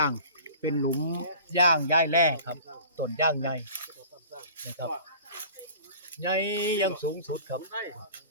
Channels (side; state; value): both; inverted; correlation -0.44